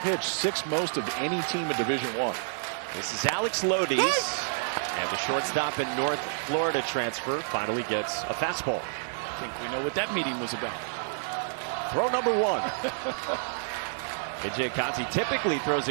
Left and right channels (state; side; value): silent; left; digital silence